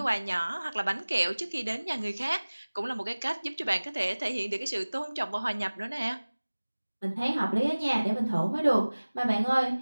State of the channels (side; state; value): both; inverted; correlation -1.00